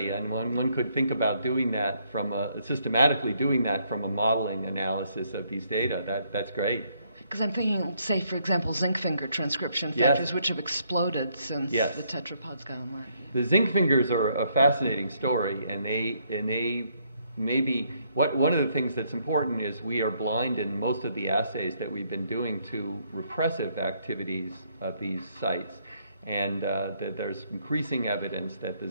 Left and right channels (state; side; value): inverted; both; correlation -0.71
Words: and one could think about doing that systematically doing that from a modeling analysis of these data. That's great. Because I'm thinking, say, for example, zinc finger transcription factors, which have exploded since the tetrapods got online. The zinc fingers are a fascinating story, and they maybe one of the things that's important is we are blind in most of the assays that we've been doing to repressive activities of these sites. And that there's increasing evidence that the